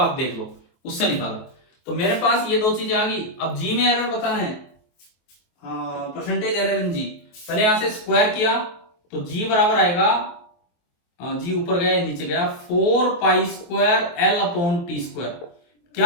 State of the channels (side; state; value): right; late; 23 ms